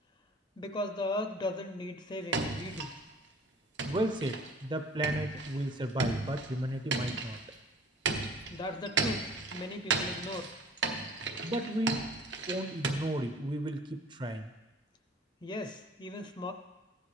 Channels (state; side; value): normal; both; correlation 0.47